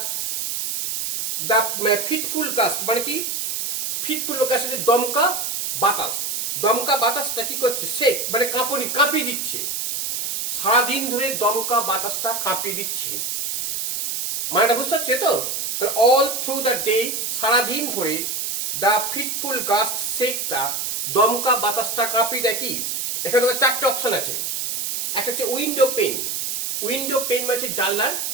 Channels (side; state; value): right; noise; hiss, 1 dB below the sound